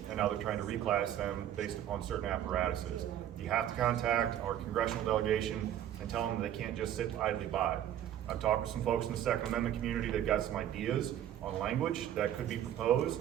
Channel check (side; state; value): left; quieter; 11.2 dB